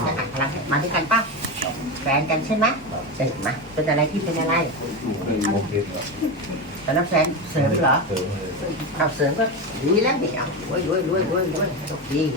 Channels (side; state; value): both; normal; correlation 0.17